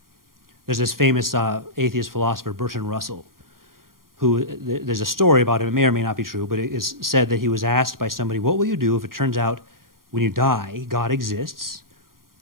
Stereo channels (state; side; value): late; left; 0.91 ms